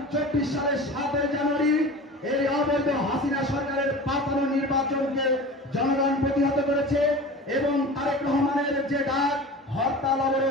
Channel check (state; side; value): normal; both; correlation 0.35